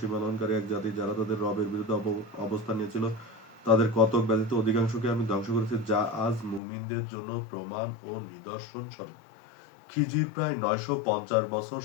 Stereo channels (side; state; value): right; drops out; at 6.6 s